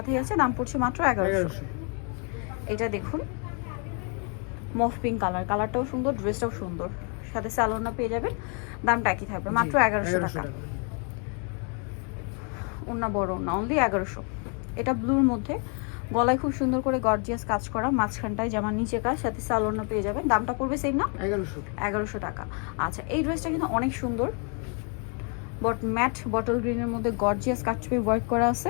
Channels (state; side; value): quieter; right; 37.9 dB